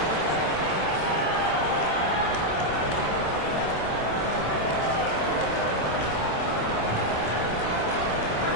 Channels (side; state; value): right; late; 26 ms